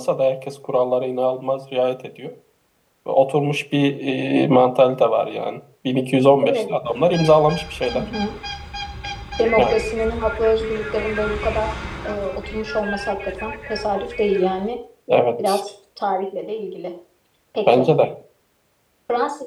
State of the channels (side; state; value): both; identical; correlation 1.00